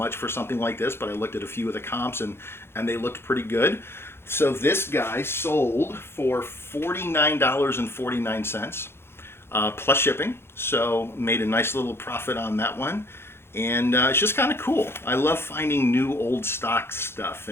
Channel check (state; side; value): late; right; 0.12 ms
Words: for something like this, but I looked at a few of the comps and they looked pretty good. So this guy sold for $49.49 plus shipping, so made a nice little profit on that one. And it's just kind of cool. I love finding new old stock stuff,